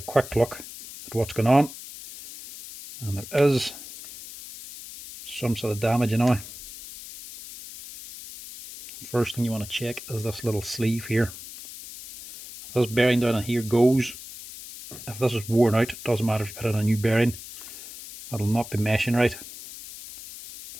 look at what's going on. And there is some sort of damage anyway. First thing you want to check is this little sleeve here. If this bearing down in here goes, if this is worn out, it doesn't matter if you put in a new bearing, it'll not be meshing right.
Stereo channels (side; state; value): left; noise; hiss, 14 dB below the sound